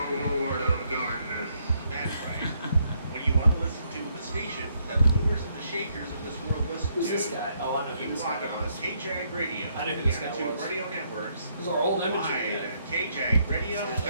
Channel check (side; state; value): both; inverted; correlation -0.73